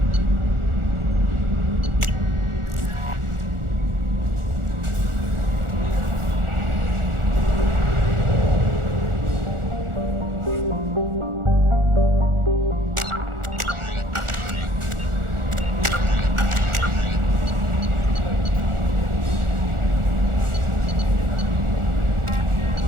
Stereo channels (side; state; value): left; late; 1.4 ms